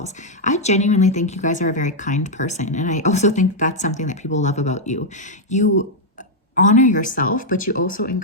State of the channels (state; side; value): normal; both; correlation -0.02